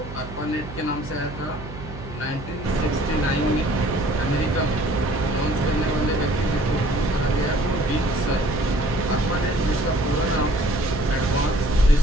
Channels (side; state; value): right; noise; hum, 12 dB below the sound